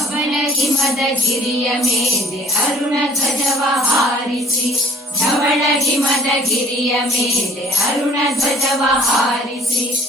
ಗಿರಿಯ ಮೇಲೆ ಅರುಣ ಧ್ವಜವ ಹಾರಿಸಿ, ಧವಳ ಹಿಮದ ಗಿರಿಯ ಮೇಲೆ ಅರುಣ ಧ್ವಜವ ಹಾರಿಸಿ,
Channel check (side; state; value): both; normal; correlation 0.54